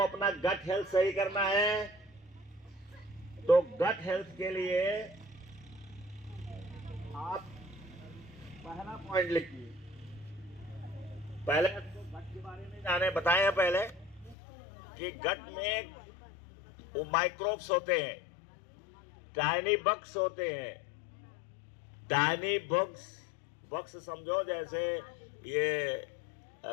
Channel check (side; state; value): right; drops out; at 14.4 s